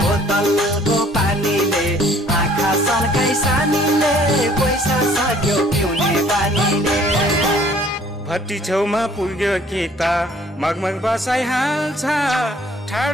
बोतलको पानीले आँखा सन्काई सानीले पैसा सक्यो पिउने बानीले भट्टी छेउमा पुग्यो कि त मगमग बसाइहाल्छ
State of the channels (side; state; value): both; normal; correlation 0.57